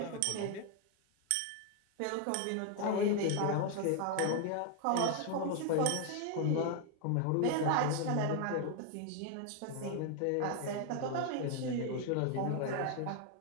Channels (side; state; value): both; different; correlation 0.00